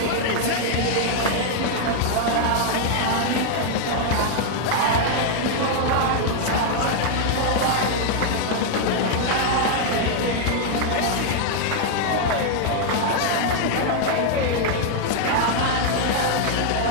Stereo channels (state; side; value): different; both; correlation 0.00